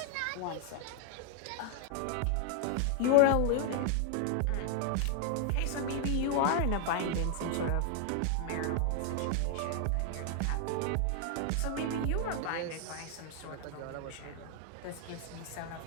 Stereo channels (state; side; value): different; both; correlation 0.00